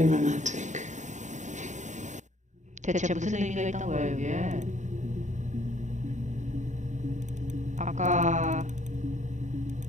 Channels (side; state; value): left; late; 0.35 ms